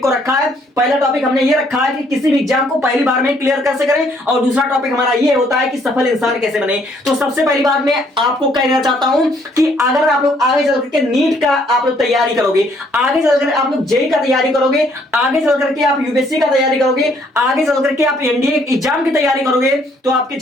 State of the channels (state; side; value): normal; both; correlation 0.66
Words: को रखा है। पहला टॉपिक हमने ये रखा है कि किसी भी एग्जाम को पहली बार में क्लियर कैसे करें, और दूसरा टॉपिक हमारा ये होता है कि सफल इंसान कैसे बने। तो सबसे पहली बात मैं आपको कहना चाहता हूं कि अगर आप लोग आगे चल करके नीट का आप लोग तैयारी करोगे, आगे चलकर आप लोग जेईई का तैयारी करोगे, आगे चल करके आप यूपीएससी का तैयारी करोगे, आगे चल करके आप एनडीए एग्जाम की तैयारी करोगे, तो आपकी